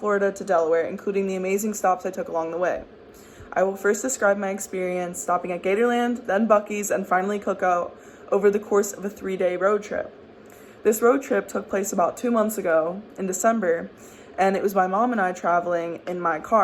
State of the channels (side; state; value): both; identical; correlation 1.00